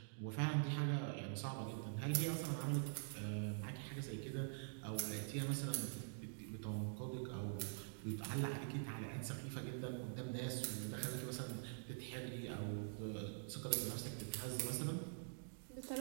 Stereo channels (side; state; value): left; silent; digital silence